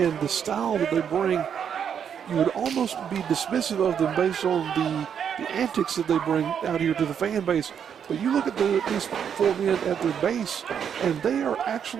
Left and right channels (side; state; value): left; quieter; 8.0 dB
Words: the style that they bring, you would almost be dismissive of them based on the antics that they bring out here to the fan base. But you look at these four men at their base, and they are